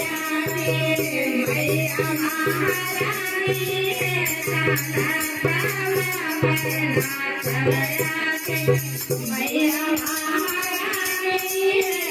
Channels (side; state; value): both; identical; correlation 1.00